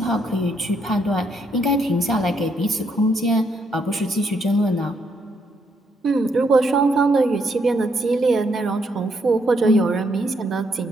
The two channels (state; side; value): normal; both; correlation 0.74